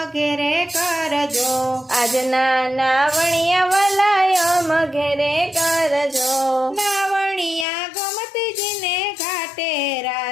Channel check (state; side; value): drops out; right; at 7.7 s